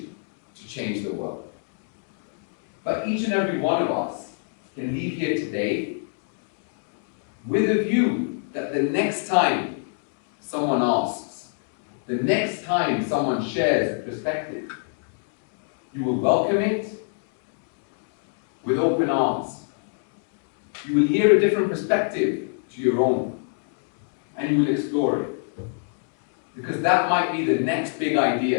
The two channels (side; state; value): right; silent; digital silence